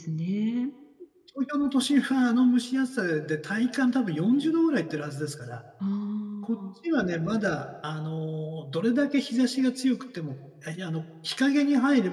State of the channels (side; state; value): both; identical; correlation 1.00